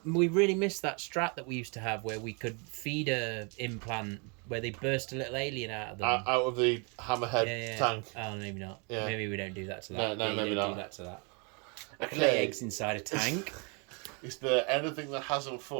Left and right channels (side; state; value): left; quieter; 34.1 dB